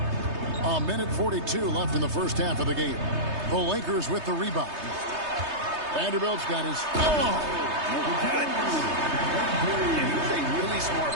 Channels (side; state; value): left; late; 3.3 ms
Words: A minute 42 left in the first half of the game. The Lakers with the rebound. Vanderbilt's got his... And he's a really smart